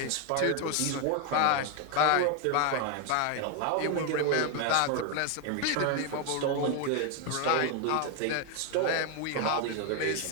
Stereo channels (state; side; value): different; both; correlation 0.01